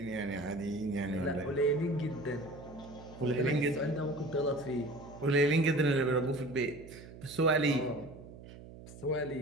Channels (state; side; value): noise; right; hum, 16 dB below the sound